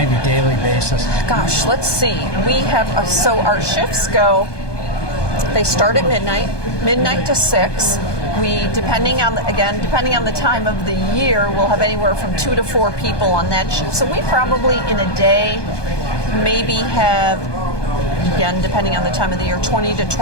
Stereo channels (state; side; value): late; right; 1.2 ms